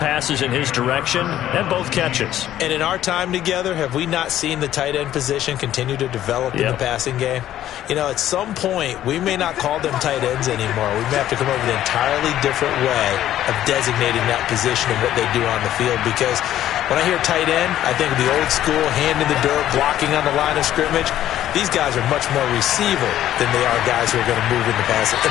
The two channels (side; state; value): right; quieter; 12.4 dB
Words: in his direction, and both catches. And in our time together, have we not seen the tight end position continue to develop in the passing game? At some point, we may not call them tight ends anymore. We may have to come up with an entirely different way of designating that position and what they do on the field. Because when I hear tight end, I think of the old school, hand in the dirt, blocking on the line of scrimmage. These guys are much more receiver than they are guys who are going to move in the